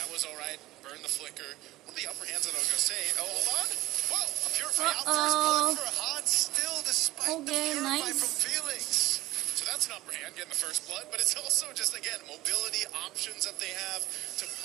was all right. Burn the flicker. One of the upper hands that I was going to say. Oh, hold on. Whoa, a Purify out first blood for Han still, despite the Purify from Felix. So that's an upper hand, getting the first blood, but it's also just, again, mobility options that they have to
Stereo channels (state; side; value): quieter; left; 17.3 dB